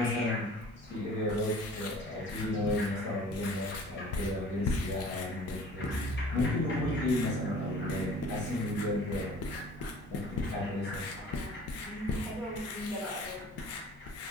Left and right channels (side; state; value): both; normal; correlation 0.48